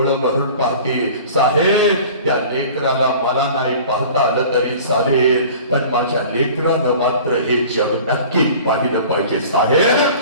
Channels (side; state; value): both; inverted; correlation -0.43